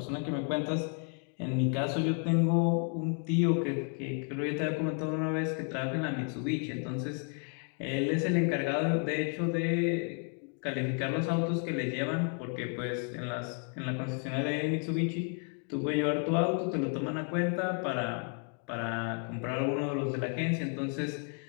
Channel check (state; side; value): quieter; right; 40.0 dB